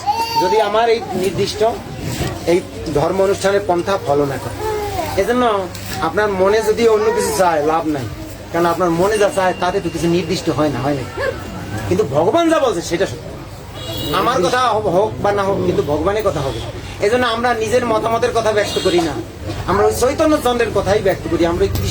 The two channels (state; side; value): identical; both; correlation 1.00